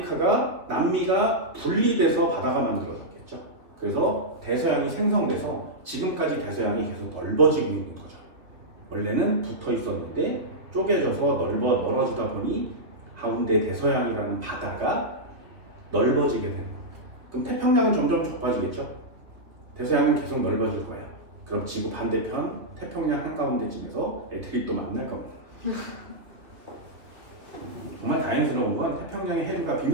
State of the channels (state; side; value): late; left; 2.9 ms